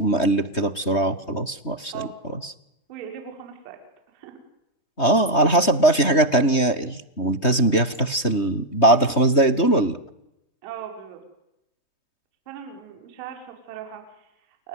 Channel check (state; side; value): late; right; 3.2 ms